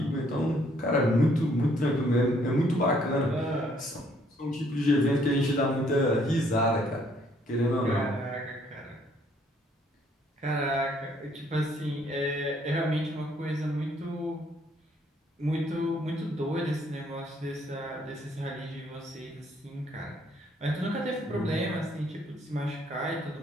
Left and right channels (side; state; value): both; normal; correlation 0.66